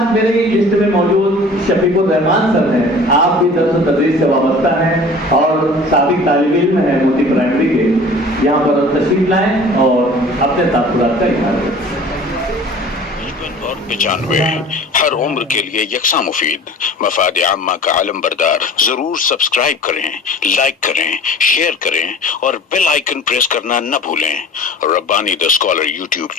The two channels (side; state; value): both; normal; correlation 0.44